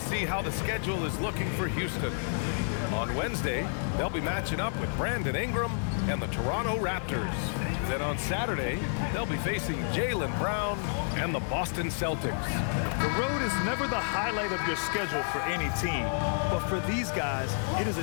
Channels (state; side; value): silent; right; digital silence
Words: see how the schedule is looking for Houston. On Wednesday, they'll be matching up with Brandon Ingram and the Toronto Raptors. Then on Saturday, they'll be facing Jaylen Brown and the Boston Celtics. The road is never the highlight of your schedule for any team, but for these guys, it is